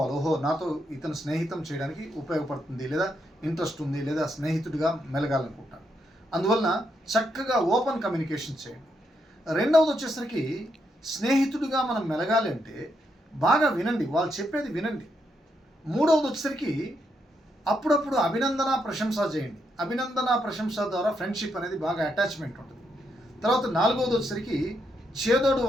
ఓహో, నాతో ఇతను స్నేహితం చేయడానికి ఉపయోగపడుతుంది, లేదా ఇంట్రెస్ట్ ఉంది, లేదా స్నేహితుడిగా మెలగాలనుకుంటాను. అందువలన చక్కగా ఓపెన్ కమ్యూనికేషన్ చేయండి. రెండవది వచ్చేసరికి, స్నేహితుడిగా మనం మెలగాలి అంటే బాగా వినండి, వాళ్ళు చెప్పేది వినండి. మూడవది వచ్చేసరికి అప్పుడప్పుడు అభినందన ప్రశంస చేయండి. అభినందన ప్రశంస ద్వారా ఫ్రెండ్షిప్ అనేది బాగా అటాచ్మెంట్ ఉంటుంది. తర్వాత నాలుగవది వచ్చేసరికి చేదోడు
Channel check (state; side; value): normal; both; correlation 0.79